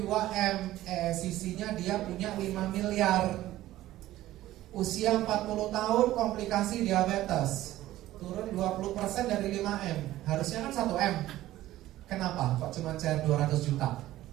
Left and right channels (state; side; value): quieter; left; 15.0 dB